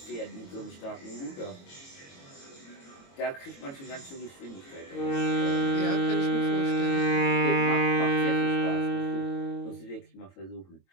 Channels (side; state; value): right; late; 22 ms